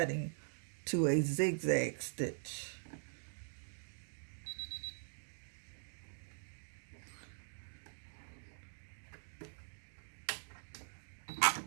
to a zigzag stitch.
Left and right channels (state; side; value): silent; left; digital silence